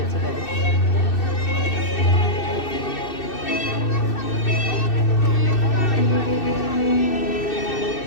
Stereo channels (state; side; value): late; right; 2.6 ms